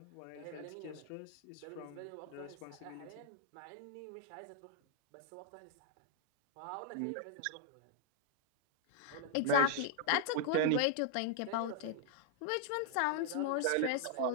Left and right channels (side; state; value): both; different; correlation -0.01